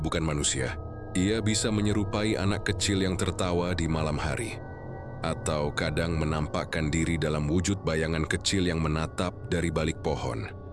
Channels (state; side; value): identical; both; correlation 1.00